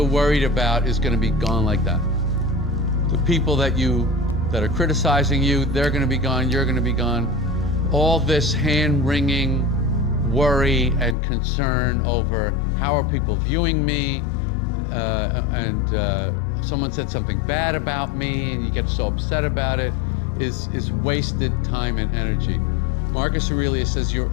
worried about is going to be gone like that. The people that are criticizing you, they're going to be gone, you're going to be gone. All this hand-wringing worry and concern over how are people viewing me, and someone said something bad about me and you get so upset about it, is wasted time and energy. Marcus Aurelius says your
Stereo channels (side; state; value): right; drops out; at 11.2 s